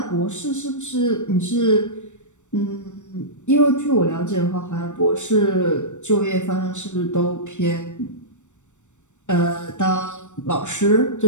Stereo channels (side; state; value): right; late; 0.84 ms